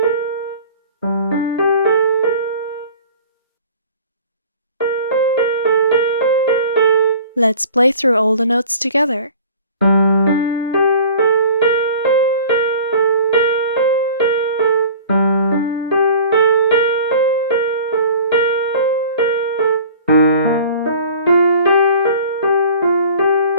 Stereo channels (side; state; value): both; inverted; correlation -0.45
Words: Let's play through all the notes together.